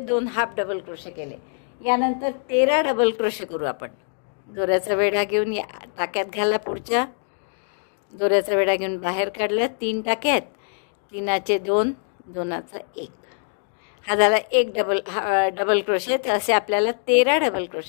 half double crochet केले. यानंतर 13 डबल क्रोशे करू आपण. दोऱ्याचा वेढा घेऊन या टाक्यात घाला. पुढच्या दोऱ्याचा वेढा घेऊन बाहेर काढलं. 3 टाक्यात 3चे 2 2चा 1. हा झाला एक डबल क्रोशे. तर असे आपल्याला 13 डबल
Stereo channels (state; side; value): silent; right; 62 dB below the other